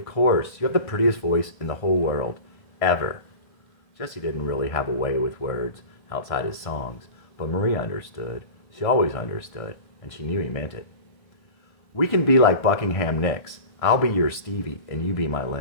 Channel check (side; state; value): right; late; 1.5 ms